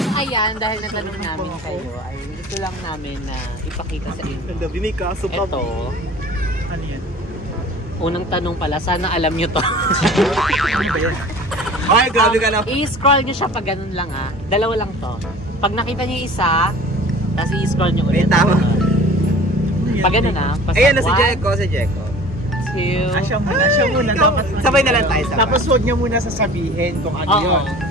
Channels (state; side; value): normal; both; correlation 0.44